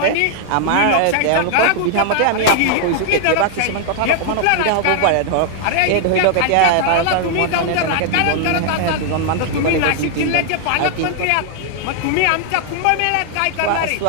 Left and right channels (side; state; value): both; different; correlation 0.00